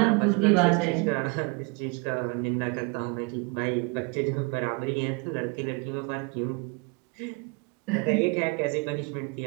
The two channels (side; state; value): left; quieter; 31.1 dB